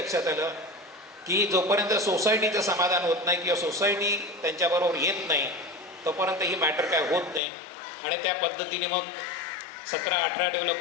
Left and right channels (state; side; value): drops out; right; at 7.4 s